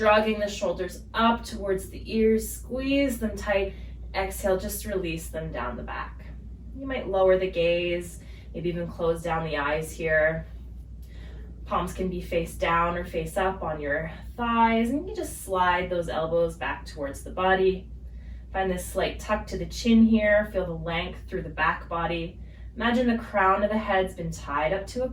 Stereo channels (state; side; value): identical; both; correlation 1.00